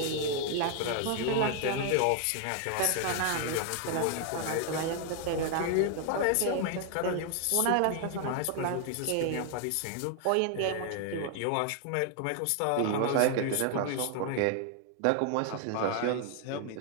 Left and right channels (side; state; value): both; different; correlation 0.00